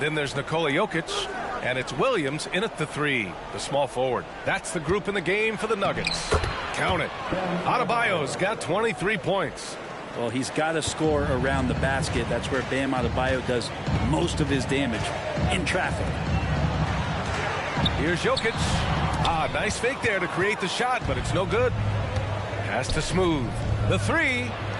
there's Nikola Jokic. And it's Williams in at the 3, the small forward. That's the group in the game for the Nuggets. Count it. Adebayo's got 23 points. Well, he's got to score around the basket. That's where Bam Adebayo does most of his damage, in traffic. Here's Jokic. Nice fake there to create the shot, but it's no good. Pass to Smooth. The 3.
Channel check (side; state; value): both; identical; correlation 1.00